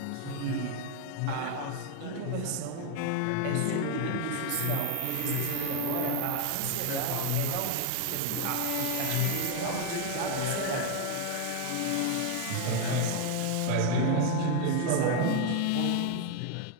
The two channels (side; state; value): both; different; correlation 0.01